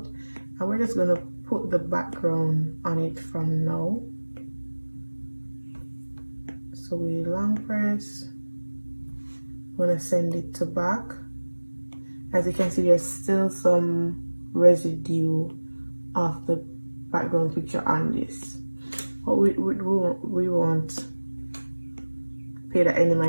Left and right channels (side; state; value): both; inverted; correlation -1.00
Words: And we're just gonna put the background on it from now. So we long press, we're gonna send it to back. As you can see, there's still some residue of the background picture on this, but we won't pay that any